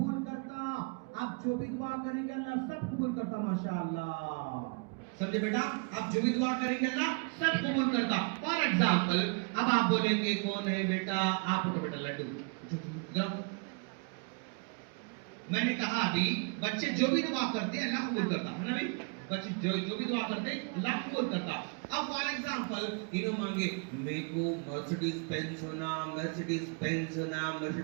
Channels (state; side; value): quieter; left; 36.3 dB